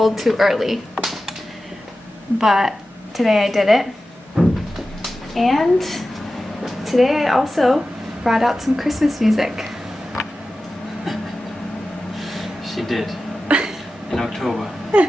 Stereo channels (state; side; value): normal; both; correlation 0.94